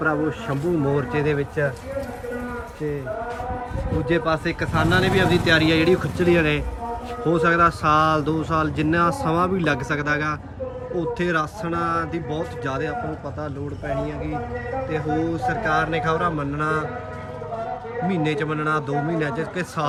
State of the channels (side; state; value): both; identical; correlation 1.00